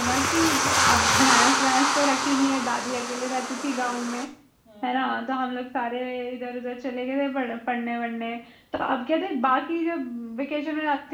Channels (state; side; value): identical; both; correlation 1.00